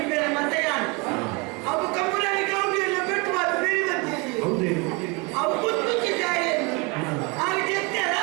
ಬೇರೆ ಮತ್ತೆ ಯಾನು ಅವು ಕಮ್ಮುರಲ್ಲಿ ಗೌಡಿಯನ್ನ ಪೆಟ್ವಾದ ಬೇರೆ ಬಂದಿದೆ ಅವು ಕುತ್ತು ಜಾಯ ಆಗ ಚೆತ್ತಾರ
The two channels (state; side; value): quieter; left; 28.9 dB